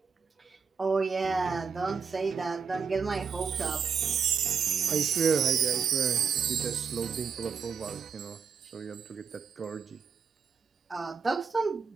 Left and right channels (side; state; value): left; quieter; 6.1 dB